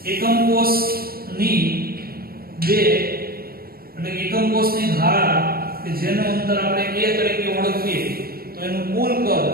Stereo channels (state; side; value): late; left; 0.44 ms